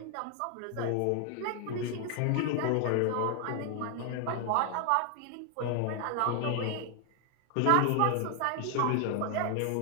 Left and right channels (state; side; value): different; both; correlation 0.00